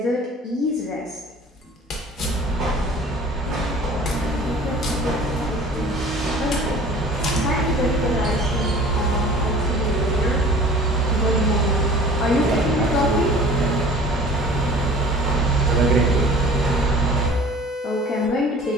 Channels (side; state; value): both; normal; correlation 0.46